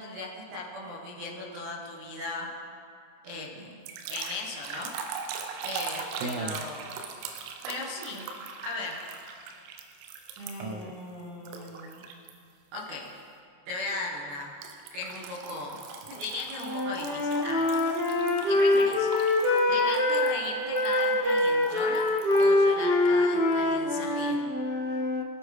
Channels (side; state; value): left; late; 28 ms